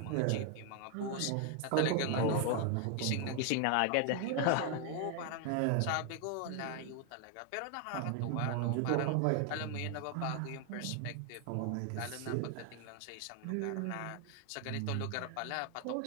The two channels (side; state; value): both; different; correlation 0.00